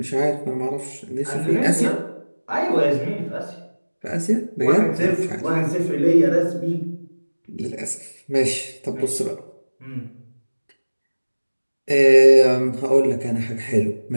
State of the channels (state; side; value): inverted; both; correlation -1.00